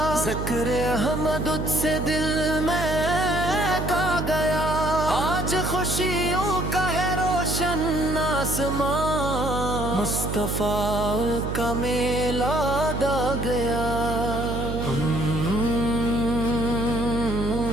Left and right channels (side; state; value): right; noise; hum, 3 dB below the sound